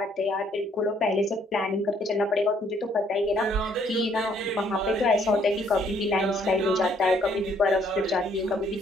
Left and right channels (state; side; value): normal; both; correlation 0.66